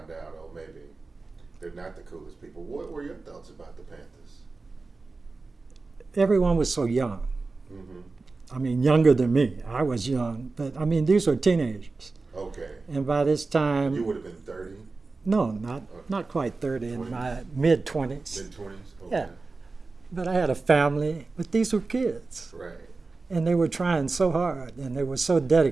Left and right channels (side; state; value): left; quieter; 3.8 dB